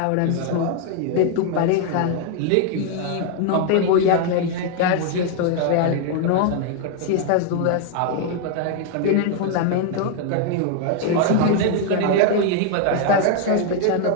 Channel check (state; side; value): different; both; correlation 0.00